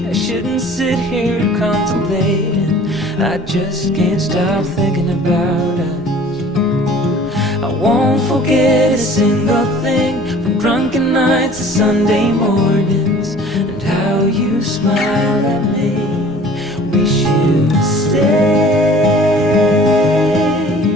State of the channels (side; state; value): both; normal; correlation 0.48